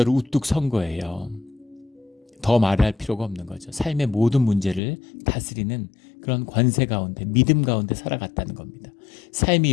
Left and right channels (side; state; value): right; drops out; at 4.8 s